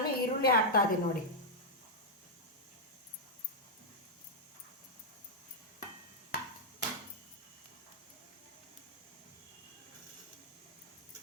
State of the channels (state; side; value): normal; both; correlation -0.05